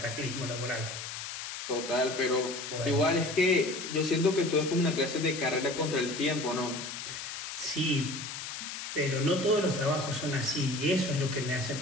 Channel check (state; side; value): noise; left; hiss, 7 dB below the sound